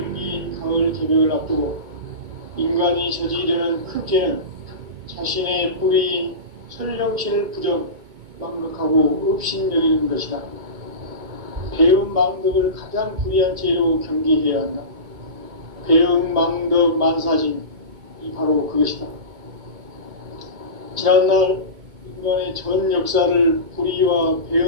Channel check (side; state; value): left; late; 2.2 ms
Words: 가을 개벽을 앞두고 인간이 저지르는 큰 죄는 자신의 뿌리인 설령신을 부정, 망각하고 업신여기는 것이다. 배은 망덕을 가장 불의한 죄로 경계해야 한다. 배은 망덕 만사진, 이 바로 그것이다. 지난날 인간의 전 역사를 불의와